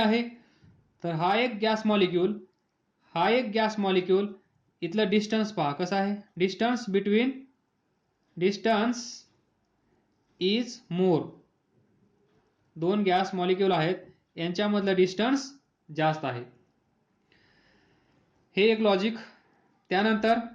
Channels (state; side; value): identical; both; correlation 1.00